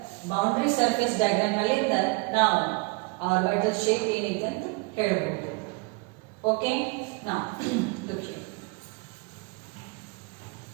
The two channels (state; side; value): quieter; left; 28.6 dB